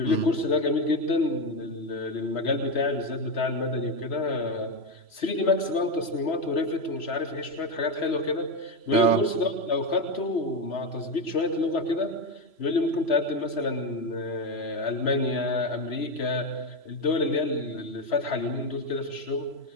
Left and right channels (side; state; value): right; late; 3.0 ms